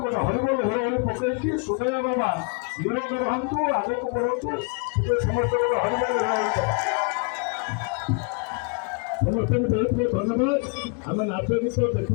ଗୋଟେ ହରିବୋଲ ହୋଳି ପକେଇକି ସୁଦୟା ବାବା ନିରୋଗ ରହନ୍ତୁ, ଆଗକୁ ବଢ଼ନ୍ତୁ। ସମସ୍ତେ ଗୋଟେ ହରିବୋଲ ହୋଳି ଦେବା। ସମସ୍ତଙ୍କୁ ବହୁତ ବହୁତ ଧନ୍ୟବାଦ। ଆମେ ନାଚ ଗୀତ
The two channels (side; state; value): right; quieter; 34.5 dB